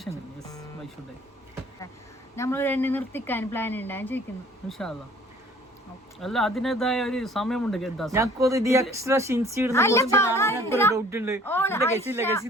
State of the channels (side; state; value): both; normal; correlation 0.53